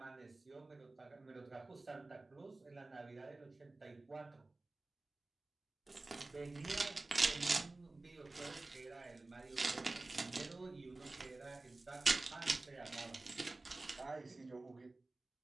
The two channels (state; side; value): quieter; left; 3.1 dB